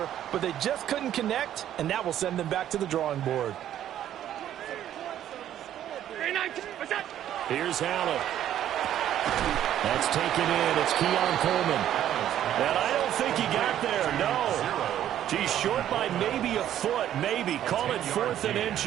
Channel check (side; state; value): left; quieter; 11.3 dB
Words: but they just couldn't connect, and that will send them back to the drawing board. Here's Allen. That's taken in. It's Keon Coleman. And I don't think he got there, no. He's short by maybe a foot, maybe. Call it 4th and